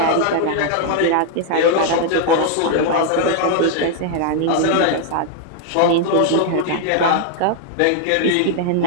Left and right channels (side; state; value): both; different; correlation 0.00